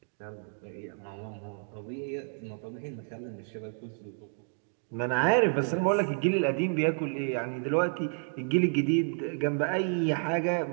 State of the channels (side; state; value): left; silent; 58 dB below the other